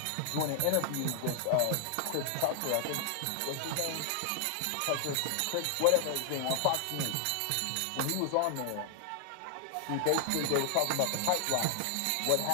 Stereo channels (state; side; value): different; both; correlation 0.00